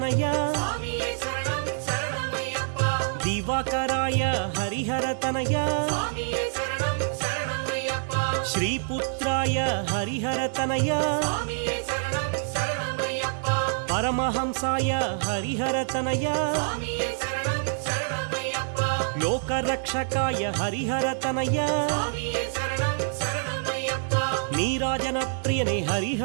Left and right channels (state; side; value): silent; left; 61 dB below the other